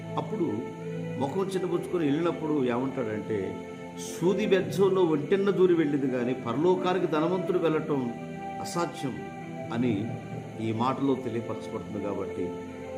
అప్పుడు ముఖం చిన్నపుచ్చుకొని వెళ్ళినప్పుడు ఏమంటాడంటే సూది బెజ్జంలో ఒంటెన్న దూరి వెళ్ళింది కానీ పరలోకానికి ధనవంతుడు వెళ్ళటం అసాధ్యం అని ఈ మాటలో తెలియపరచబడుతుంది. కాబట్టి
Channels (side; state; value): both; identical; correlation 1.00